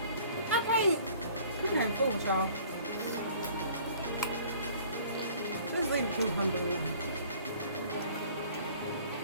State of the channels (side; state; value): both; inverted; correlation -0.52